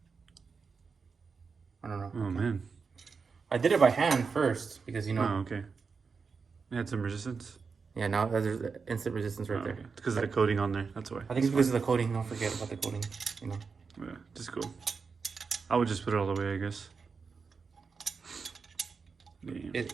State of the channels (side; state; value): left; quieter; 5.1 dB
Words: I don't know. Oh, man. I did it by hand first because, you know... Oh, okay. It had some resistance. Yeah, now there's instant resistance right there. Okay. It's because of the coating on there. That's why. I think it's because of the coating. Don't forget about the coating, you know. Yeah, just go. I would just put it all the way, I guess. Yeah.